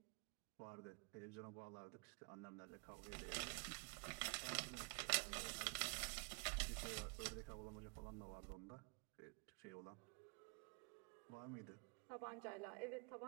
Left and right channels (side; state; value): left; quieter; 34.7 dB